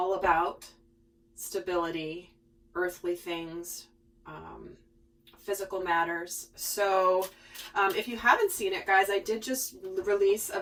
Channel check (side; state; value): both; identical; correlation 1.00